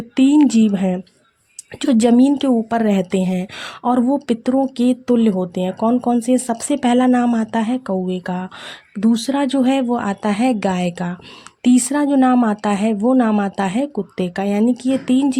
3 जीव हैं जो ज़मीन के ऊपर रहते हैं और वो पितरों के तुल्य होते हैं, कौन कौन से। सबसे पहला नाम आता है कौवे का, दूसरा जो है वो आता है गाय का, तीसरा जो नाम आता है वो नाम आता है कुत्ते का। यानी कि ये 3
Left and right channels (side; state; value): both; identical; correlation 1.00